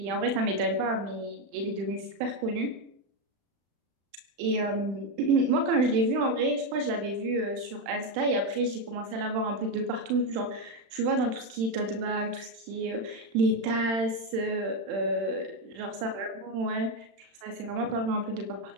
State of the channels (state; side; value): late; left; 36 ms